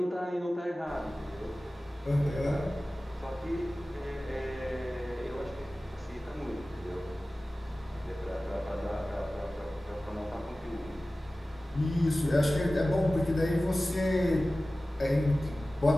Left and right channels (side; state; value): both; normal; correlation 0.96